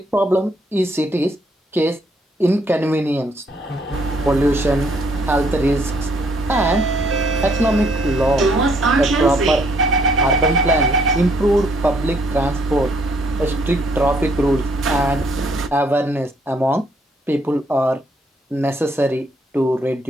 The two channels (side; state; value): both; normal; correlation 0.68